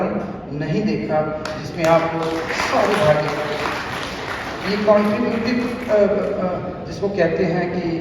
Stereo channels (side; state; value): both; identical; correlation 1.00